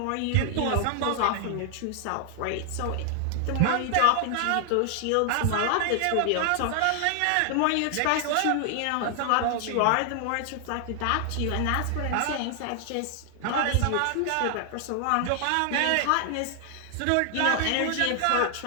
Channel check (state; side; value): different; both; correlation 0.00